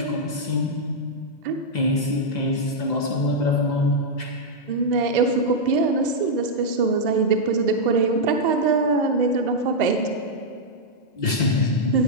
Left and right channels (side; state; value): right; late; 2.0 ms